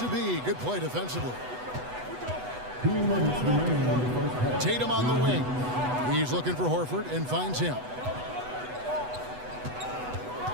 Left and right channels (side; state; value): left; late; 8.1 ms